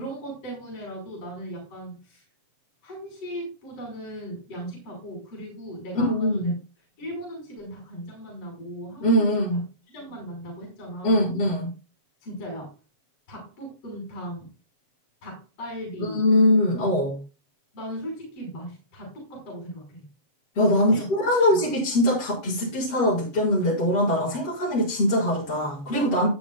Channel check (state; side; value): late; right; 7.5 ms